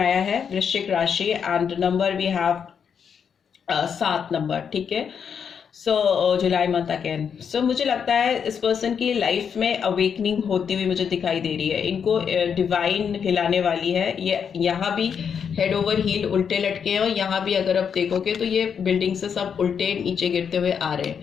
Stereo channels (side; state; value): right; quieter; 7.2 dB